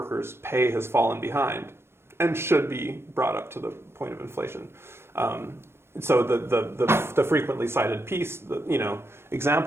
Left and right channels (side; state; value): left; late; 0.12 ms